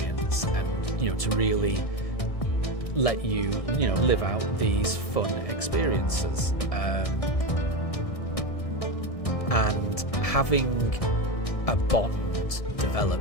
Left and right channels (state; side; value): late; right; 1.7 ms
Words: and, you know, to really let you, you know, live out these fun experiences. And having a bond develop